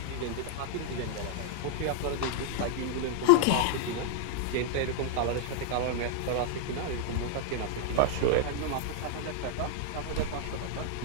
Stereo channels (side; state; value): both; different; correlation -0.01